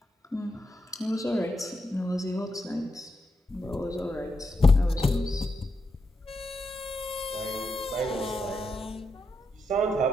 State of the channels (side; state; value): both; normal; correlation 0.84